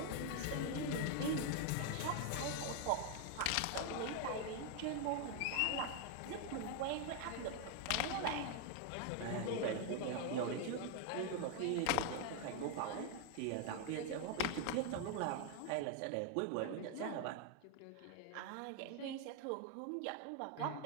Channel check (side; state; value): both; different; correlation 0.01